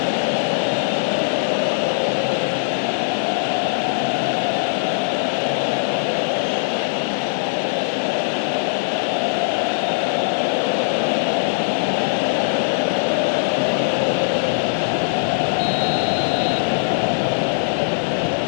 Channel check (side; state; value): right; silent; 65 dB below the other